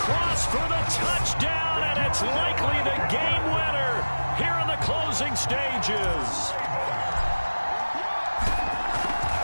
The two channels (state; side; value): inverted; both; correlation -1.00